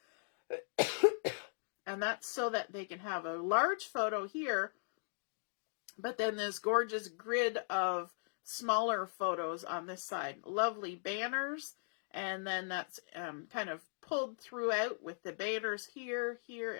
And that's so that they can have a large photo here, but then this gorgeous grid of smaller photos on this side. Lovely banners, and then that's kind of pulled throughout with the banners here, here,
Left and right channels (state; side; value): silent; right; digital silence